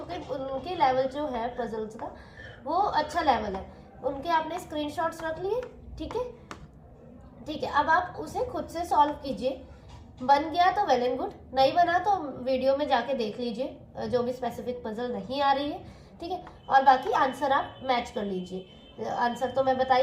उनके लेवल जो है पजल्स का वो अच्छा लेवल है, उनके आपने स्क्रीनशॉट्स रख लिए। ठीक है, ठीक है, अब आप उसे खुद से सॉल्व कीजिए। बन गया तो वेल एंड गुड, नहीं बना तो वीडियो में जाके देख लीजिए, जो भी स्पेसिफिक पजल नहीं आ रही है। ठीक है, और बाकी आंसर आप मैच कर लीजिए। आंसर तो मैं बता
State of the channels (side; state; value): both; identical; correlation 1.00